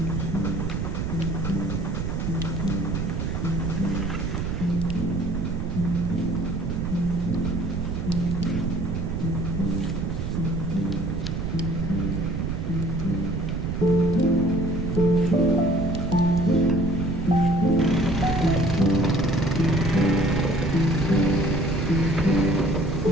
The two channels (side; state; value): right; noise; rumble, 2 dB below the sound